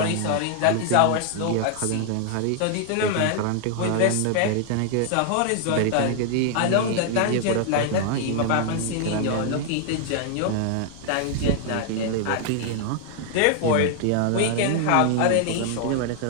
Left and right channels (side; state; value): both; different; correlation 0.00